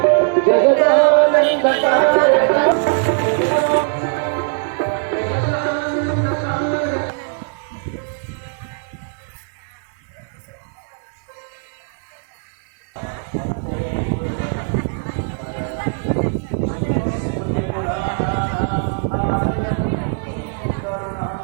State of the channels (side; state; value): left; silent; 56 dB below the other